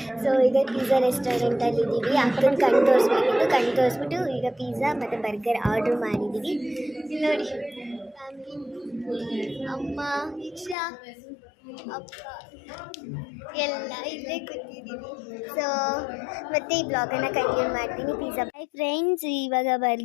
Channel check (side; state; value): right; drops out; at 10.8 s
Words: ಸೊ ಇದೇ ಪಿಜ್ಜಾ ರೆಸ್ಟೋರೆಂಟಲ್ಲಿ ಇದ್ದೀವಿ. ಅಕ್ಕನ ಕಣ್ ತೋರಿಸ್ಬಿಟ್ಟು ಈಗ ಪಿಜ್ಜಾ ಮತ್ತು ಬರ್ಗರ್ ಆರ್ಡ್ರ್ ಮಾಡಿದ್ದೀವಿ. ಇಲ್ಲಿ ನೋಡಿ, ಫ್ಯಾಮಿಲಿ, ಅಮ್ಮ, ಇಕ್ಷಾ, ಅಪ್ಪ ಎಲ್ಲ ಇಲ್ಲೇ ಕೂತಿದ್ದೀವಿ. ಸೊ ಮತ್ತೆ ಈ ಬ್ಲಾಗನ್ನು ಕಂಟಿನ್ಯೂ ಮಾಡ್ತೀನಿ. ಪಿಜ್ಜಾ. ಹಾಯ್ ಫ್ರೆಂಡ್ಸ್, ಇವಾಗ